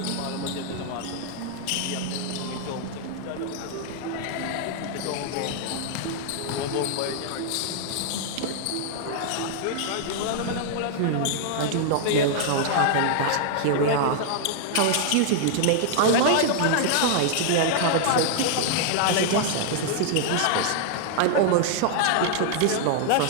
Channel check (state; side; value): different; both; correlation -0.01